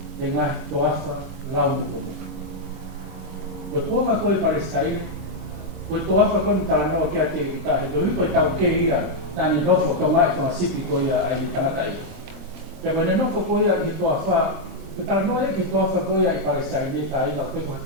e ngahi toafa lau muko muka. Koe kuonga koe Palestine, koe toafa koe ni taranoa kia te ika, he koe koe tau ke ia, nani nofo tonga i whangasipi koe ia ai ni tangata i. Pea koe ne nofo koe ia i he toafa, koe taranoa e ke toafa koe ia i Palestine, e ka ina o koe koe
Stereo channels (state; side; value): late; left; 23 ms